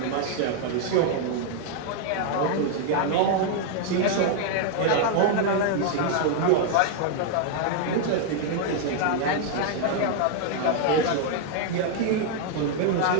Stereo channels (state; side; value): different; both; correlation 0.00